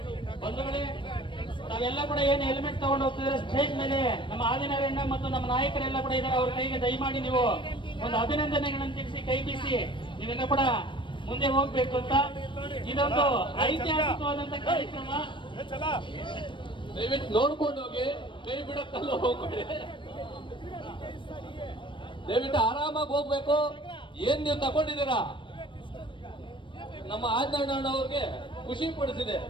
ಬಂಧುಗಳೇ, ನಾವೆಲ್ಲ ಕೂಡ ಏನು ಹೆಲ್ಮೆಟ್ ತಗೊಂಡು ಹೋಗ್ತಿದ್ರೆ ಸ್ಟೇಜ್ ಮೇಲೆ ನಮ್ಮ ಆದಿನಾರಾಯಣ ಮತ್ತು ನಮ್ಮ ನಾಯಕರೆಲ್ಲ ಕೂಡ ಇದ್ದಾರೆ. ಅವ್ರ ಕೈಗೆ ದಯಮಾಡಿ ನೀವು ಒಂದು ಅಭಿನಂದನೆಗಳನ್ನು ತಿಳಿಸಿ ಕೈ ಬೀಸಿ ನೀವೆಲ್ಲ ಕೂಡ ಮುಂದೆ ಹೋಗ್ಬೇಕು ಅಂತ. ಇದೊಂದು ಐತಿಹಾಸಿಕವಾದಂತ ಕಾರ್ಯಕ್ರಮ. ದಯವಿಟ್ಟು ನೋಡ್ಕೊಂಡು ಹೋಗಿ, ಕೈ ಬಿಡಕ್ಕಲ್ಲ ಹೋಗ್ಬೇಡಿ. ದಯವಿಟ್ಟು ಆರಾಮಾಗಿ ಹೋಗ್ಬೇಕು. ಏನ್ ನೀವು ತಗೊಂಡಿದ್ದೀರಾ ನಮ್ಮ ಆದಿನಾರಾಯಣ ಅವ್ರಿಗೆ ಖುಷಿ ಪಡಿಸಿದೆ.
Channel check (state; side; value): late; right; 0.24 ms